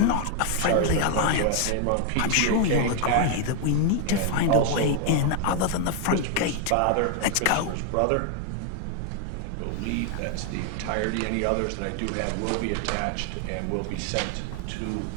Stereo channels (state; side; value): different; both; correlation 0.00